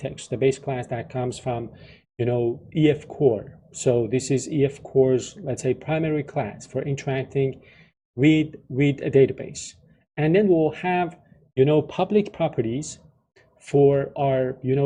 the base class that comes from, EF core. So this is EF core's, let's say, primary class for interacting with a database. And then we'll have, public properties for our,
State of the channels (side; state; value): both; identical; correlation 1.00